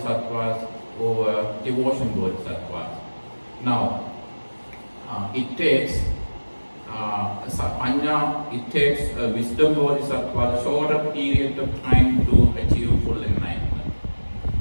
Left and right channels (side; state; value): both; inverted; correlation -1.00